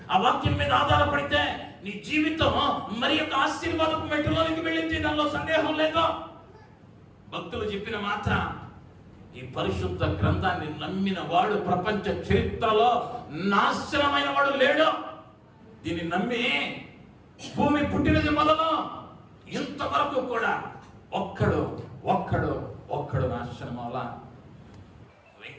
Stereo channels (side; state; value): both; identical; correlation 1.00